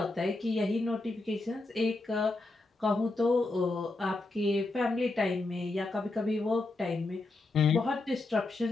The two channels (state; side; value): quieter; right; 3.0 dB